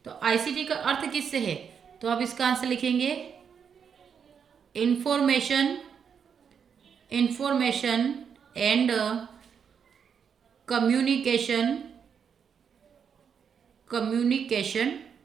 तो आईसीटी का अर्थ किससे है, तो आप इसका आंसर लिखेंगे इंफॉर्मेशन एंड कम्युनिकेशन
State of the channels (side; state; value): left; quieter; 7.1 dB